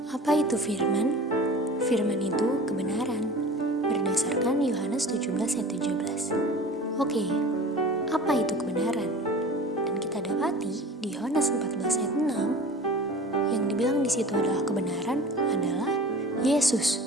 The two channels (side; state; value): both; normal; correlation 0.40